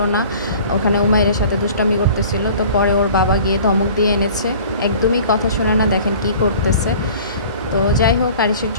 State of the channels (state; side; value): inverted; both; correlation -0.46